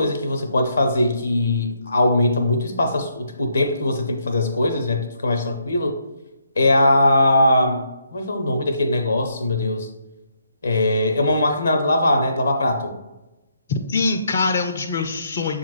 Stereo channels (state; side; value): inverted; both; correlation -0.75